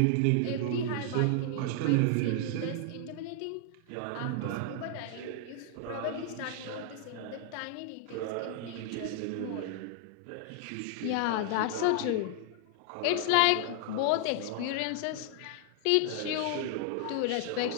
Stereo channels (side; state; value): both; different; correlation 0.00